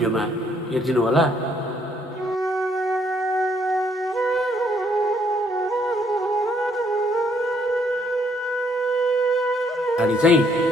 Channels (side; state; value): both; normal; correlation 0.68